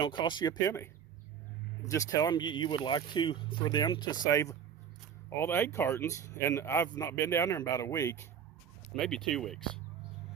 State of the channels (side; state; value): left; quieter; 8.2 dB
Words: cost you a penny. Just tell them you would like for them to save all the egg cartons. And I've not been down there in about a week, maybe 2 weeks.